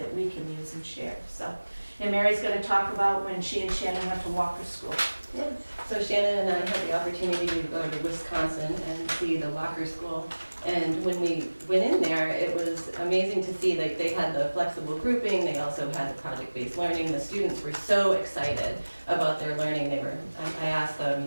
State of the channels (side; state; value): both; inverted; correlation -1.00